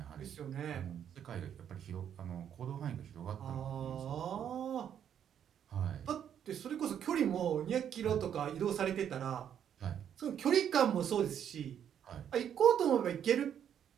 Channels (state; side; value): quieter; left; 9.1 dB